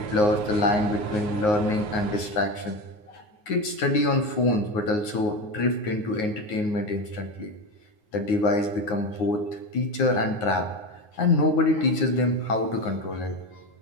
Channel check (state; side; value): late; right; 9.5 ms